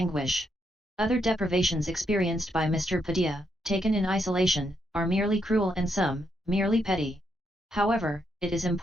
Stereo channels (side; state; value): both; normal; correlation 0.78